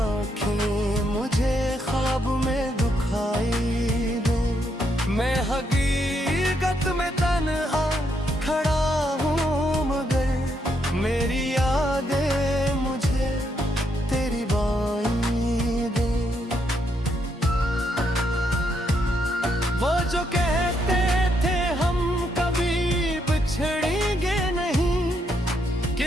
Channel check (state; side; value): normal; both; correlation 0.77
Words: मुझे ख्वाब में दुखाई दे। मैं हकीकत में तन्हा खड़ा हूँ, मगर मेरी यादें मुझे तेरी बाई दे। वो जो कहते थे हम कभी बिछड़ेंगे नहीं,